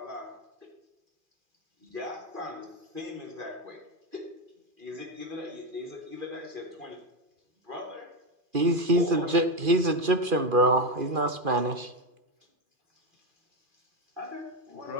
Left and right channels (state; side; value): late; left; 2.4 ms